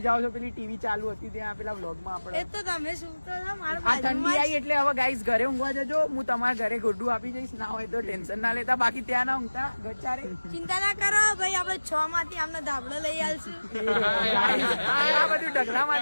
જાઓ છો, પેલી ટીવી ચાલુ હતી ત્યાં પેલા વ્લોગમાં એ આપણે. તો તમે શું તો છો મારા આ ઠંડી બાજુમાં આવી એટલે હવે ગાઈસ ઘરે ઊંઘવા જજો. હું તમારા ઘરે ગોડું આપી જઈશ, ના હોય તો ટેન્શન ના લેતા. બાકી ત્યાં ના ઊંઘતા ગચારે. ચિંતા ના કરો ભાઈ, આપણે 6 માંથી આમને ધાબળો લઈ આલશું. આ બધું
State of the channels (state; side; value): inverted; both; correlation -1.00